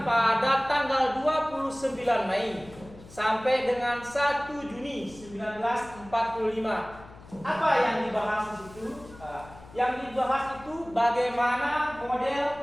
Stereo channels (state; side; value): noise; left; hum, 20 dB below the sound